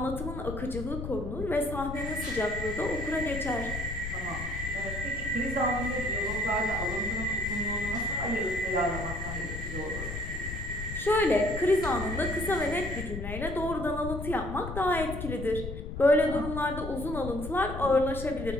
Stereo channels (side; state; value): left; noise; rumble, 7 dB below the sound